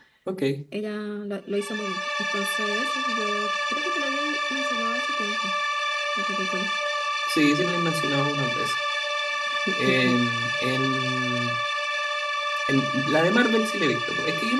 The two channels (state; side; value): identical; both; correlation 1.00